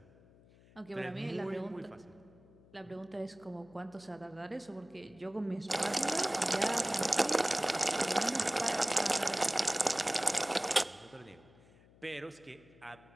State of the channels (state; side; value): noise; left; hum, 26 dB below the sound